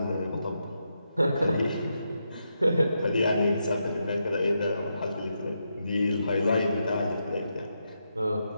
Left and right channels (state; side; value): inverted; both; correlation -0.83